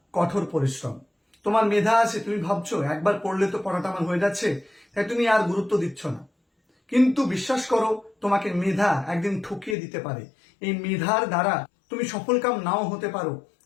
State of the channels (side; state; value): right; drops out; at 9.8 s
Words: কঠোর পরিশ্রম। তোমার মেধা আছে, তুমি ভাবছো একবার পড়লে তো পড়াটা আমার হয়ে যাচ্ছে, তাই তুমি আর গুরুত্ব দিচ্ছ না। কিন্তু বিশ্বাস করো, তোমাকে মেধা একদিন ঠকিয়ে দিতে পারে। এই মেধার দ্বারা তুমি সফলকাম নাও হতে পারো,